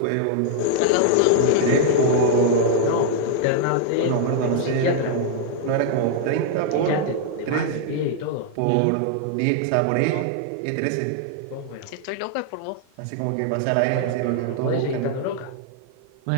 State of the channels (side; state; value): both; different; correlation 0.00